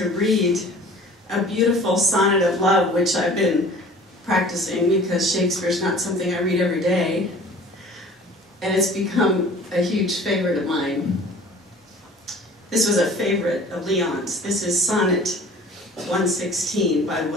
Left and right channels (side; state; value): both; normal; correlation 0.46